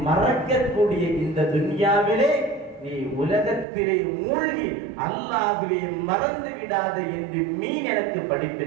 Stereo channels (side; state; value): left; drops out; at 3.7 s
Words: மறக்கக்கூடிய இந்த துன்யாவிலே நீ உலகத்திலே மூழ்கி அல்லாஹ்வை மறந்து விடாத என்று மீன் எனக்கு